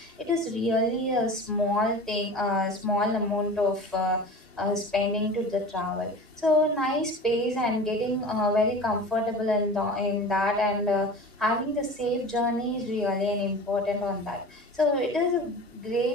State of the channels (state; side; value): normal; both; correlation 0.36